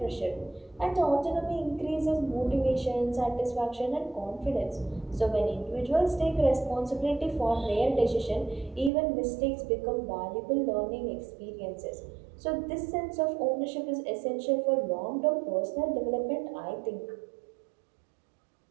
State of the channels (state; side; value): drops out; left; at 8.9 s